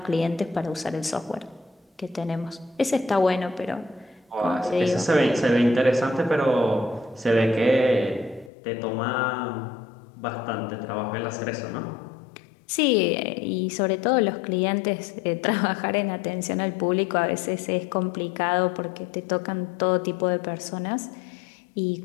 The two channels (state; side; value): drops out; right; at 8.5 s